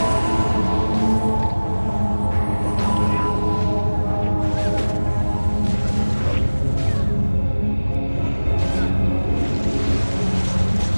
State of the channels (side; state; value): both; inverted; correlation -1.00